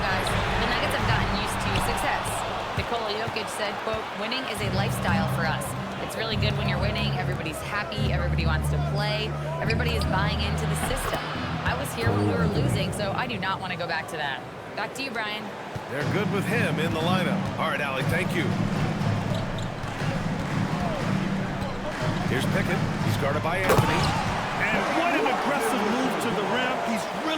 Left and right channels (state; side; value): identical; both; correlation 1.00